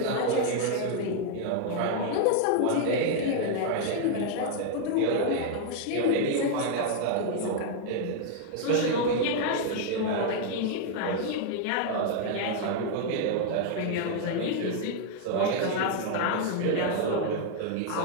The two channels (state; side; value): different; both; correlation 0.00